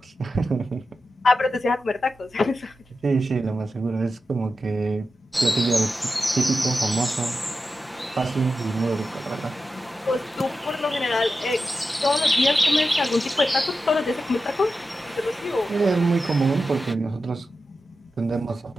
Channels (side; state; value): both; normal; correlation 0.91